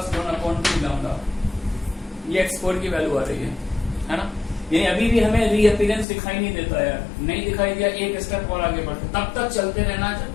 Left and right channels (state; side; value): drops out; right; at 6.1 s